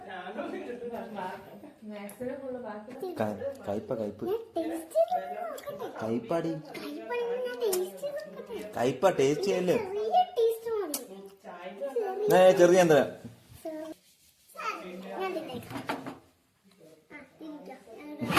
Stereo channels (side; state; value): both; identical; correlation 1.00